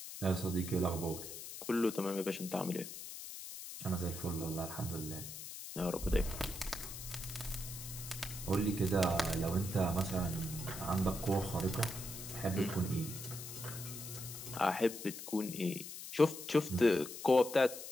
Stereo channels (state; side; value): noise; left; hiss, 10 dB below the sound